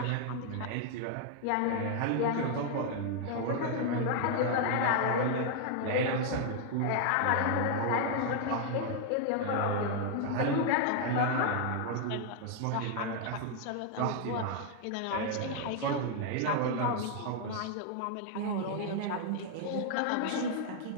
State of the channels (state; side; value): different; both; correlation 0.00